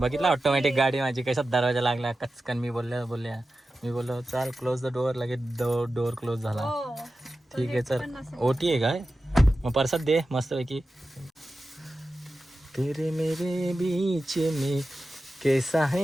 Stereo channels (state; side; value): normal; both; correlation 0.93